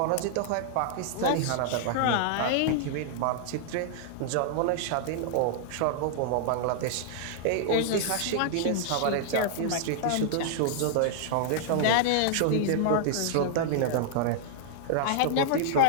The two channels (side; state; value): both; different; correlation -0.01